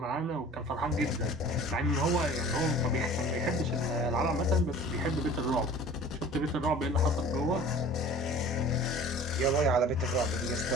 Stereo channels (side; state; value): both; normal; correlation 0.44